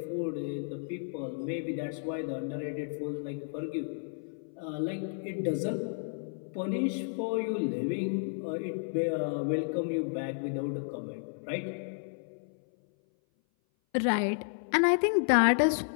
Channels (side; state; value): right; silent; 56 dB below the other